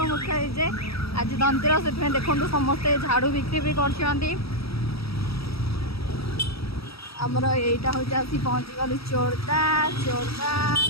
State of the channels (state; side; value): late; right; 0.76 ms